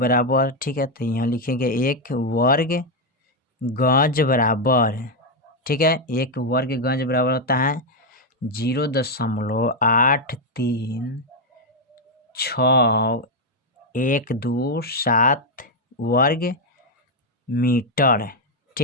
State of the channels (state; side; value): normal; both; correlation 0.02